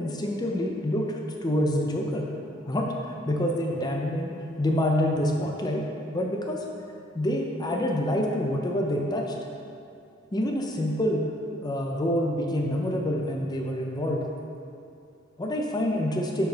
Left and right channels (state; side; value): normal; both; correlation 0.66